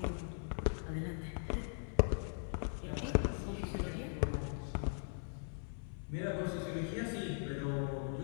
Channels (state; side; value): silent; right; 51 dB below the other